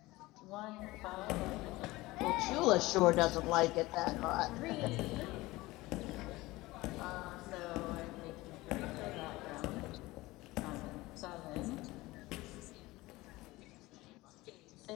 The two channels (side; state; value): right; quieter; 19.8 dB